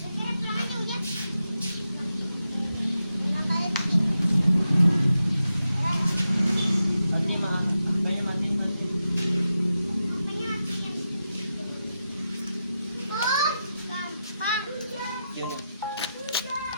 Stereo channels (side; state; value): both; inverted; correlation -0.88